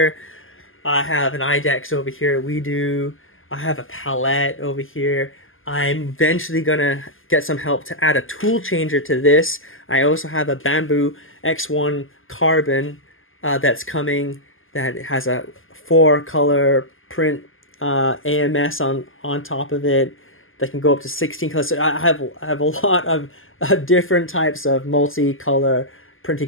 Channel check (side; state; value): right; late; 0.59 ms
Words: I have an IDEX over here, I have a palette over here. I'm eventually gonna get some help to add a tool changer to this. I also have a Bamboo X1 carbon that's coming, that has a 4-color print AMS on top of it that can go up to 16 colors. So I have a lot of different types of multicolor printing